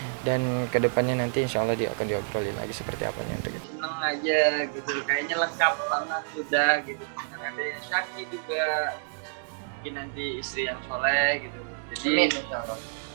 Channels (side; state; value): left; silent; digital silence